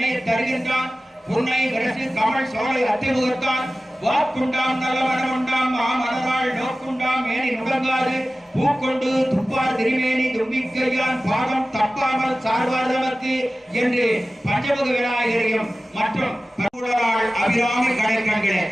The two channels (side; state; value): both; normal; correlation 0.96